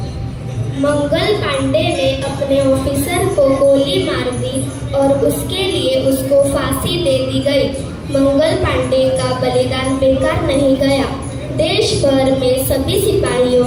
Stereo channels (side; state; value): both; identical; correlation 1.00